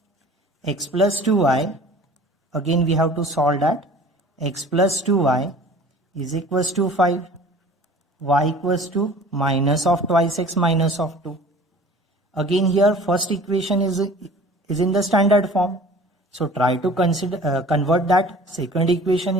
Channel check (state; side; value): normal; both; correlation 0.45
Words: x plus 2y. Again we have to solve that. X plus 2y is equals to 5. Y equals to minus of twice x minus of 2. Again here first equation is in the standard form. So try to convert that second equation